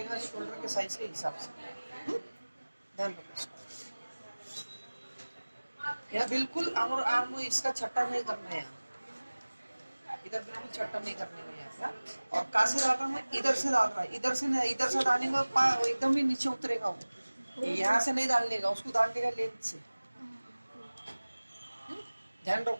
शोल्डर के साइज के हिसाब से। ध्यान रखो इसका। यहाँ बिल्कुल आर्म इसका छट्टा नहीं करना है, इधर बिल्कुल छट्टा नहीं करने में यहाँ। और कहाँ से डाल रहा है? इधर से डाल रहा है, इधर से नहीं, इधर से डालने का एकदम ही नीचे उतरेगा वो। यहाँ से नहीं डालने का, उसको डालने का लेंथ से। ध्यान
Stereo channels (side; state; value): both; inverted; correlation -1.00